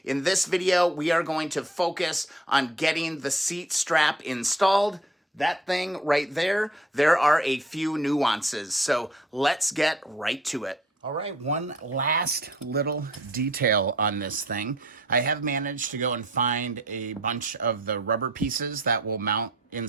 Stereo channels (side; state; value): both; normal; correlation 0.56